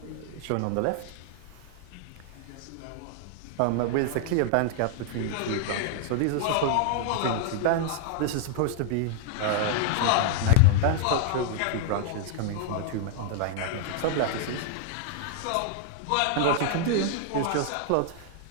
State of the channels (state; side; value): different; both; correlation 0.00